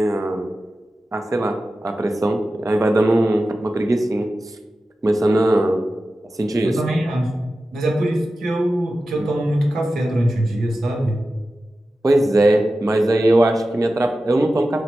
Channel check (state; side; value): normal; both; correlation 0.93